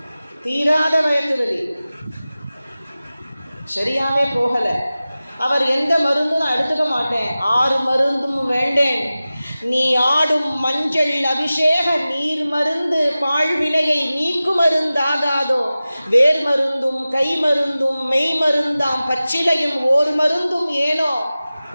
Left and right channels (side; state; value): both; inverted; correlation -0.96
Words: தீராத வயத்து வலி சரியாவே போகலை. அவர் எந்த மருந்தும் நான் எடுத்துக்க மாட்டேன், 6 மருந்தும் வேண்டேன், நீ ஆடும் மஞ்சள் அபிஷேக நீர் மருந்து பாழ்வினையை நீக்கு மருந்தாகாதோ, வேர் மருந்தும் கை மருந்தும் மெய் மருந்தாம் பச்சிலையும் ஓர் மருந்தும் ஏனோ